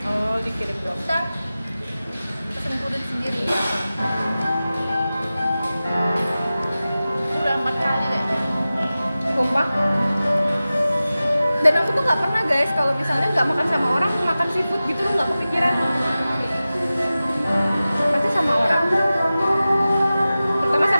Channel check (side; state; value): both; inverted; correlation -0.95